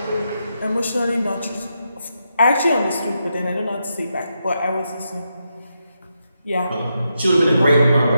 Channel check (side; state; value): both; inverted; correlation -0.84